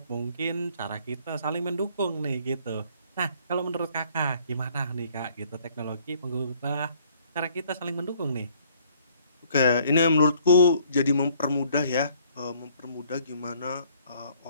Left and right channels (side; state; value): both; inverted; correlation -0.62